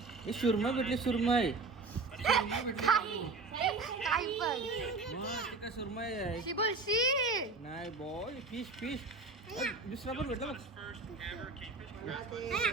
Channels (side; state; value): left; quieter; 3.8 dB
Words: सुरमई भेटली. सुरमई काय पण सुरमई आहे. बोलशी नाही बॉय. फिश फिश दुसरा पण भेटला बघ.